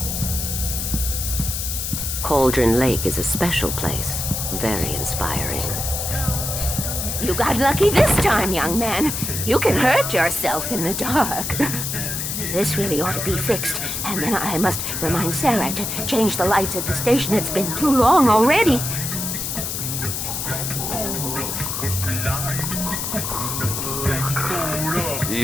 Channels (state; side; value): noise; left; hiss, 3 dB below the sound